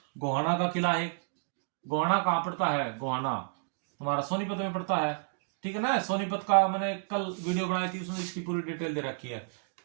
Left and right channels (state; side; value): silent; left; digital silence